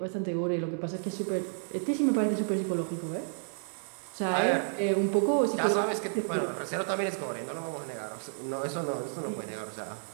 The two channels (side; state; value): left; silent; digital silence